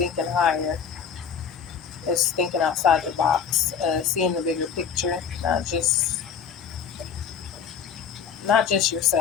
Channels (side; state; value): right; quieter; 7.2 dB